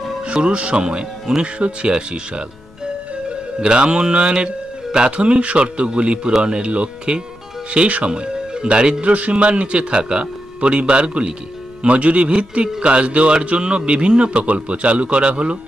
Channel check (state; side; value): noise; left; rumble, 26 dB below the sound